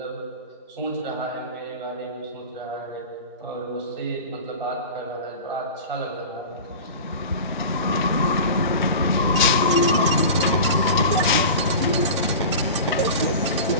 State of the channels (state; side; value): inverted; both; correlation -0.33